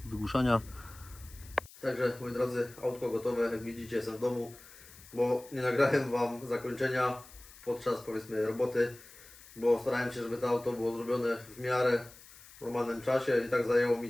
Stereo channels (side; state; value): left; noise; hiss, 20 dB below the sound